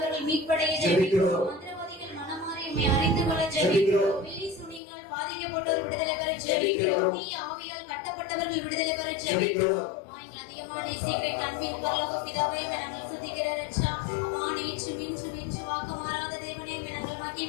மீட்படைய ஜெபிக்கிறோம். மந்திரவாதிகள் மனமாறி உம்மை அறிந்து கொள்ள ஜெபிக்கிறோம். பில்லி சுனியால் பாதிக்கப்பட்டோர் விடுதலை பெற ஜெபிக்கிறோம். தீய ஆவியால் கட்டப்பட்டவர்கள் விடுதலை பெற ஜெபிக்கிறோம். அதிகமான சீக்கிரம் அன்பின் பரலோக பிதாவே, நாங்கள் துதிக்கிற ரட்சா. நேற்று மின்று வாக்கு மாறாத தேவனே, நாங்கள்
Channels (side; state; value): right; drops out; at 4.8 s